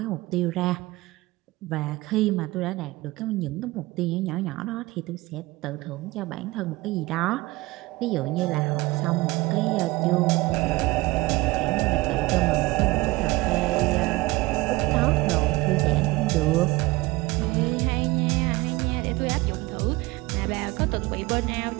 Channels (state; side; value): quieter; left; 21.0 dB